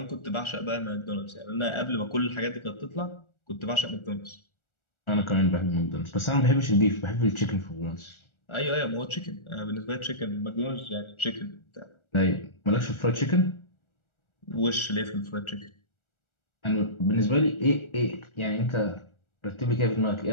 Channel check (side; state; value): right; late; 1.4 ms